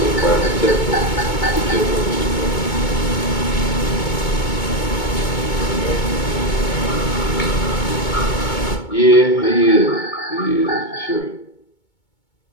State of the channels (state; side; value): late; right; 2.2 ms